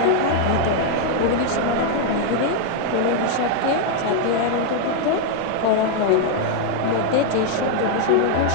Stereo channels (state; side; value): different; both; correlation 0.00